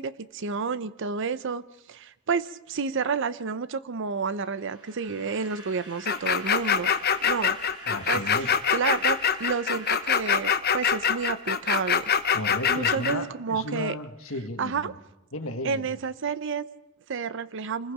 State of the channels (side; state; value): both; normal; correlation -0.07